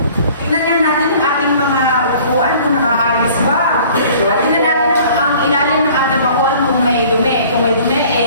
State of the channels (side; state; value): both; inverted; correlation -0.51